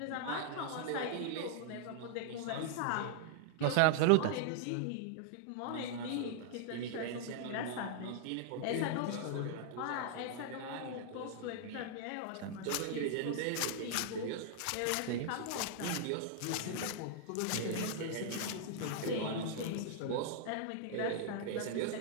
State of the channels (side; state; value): both; different; correlation -0.01